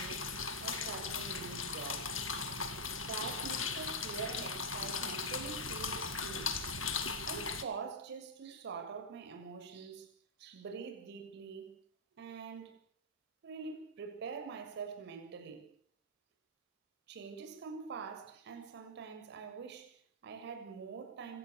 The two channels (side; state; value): both; normal; correlation -0.07